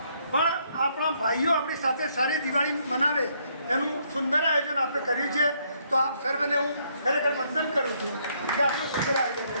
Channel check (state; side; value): inverted; both; correlation -0.71